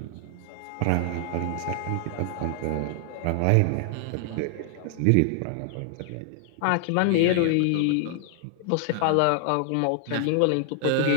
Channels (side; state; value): both; different; correlation -0.01